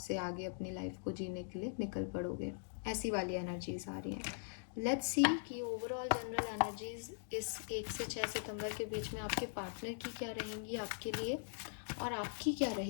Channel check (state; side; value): silent; right; digital silence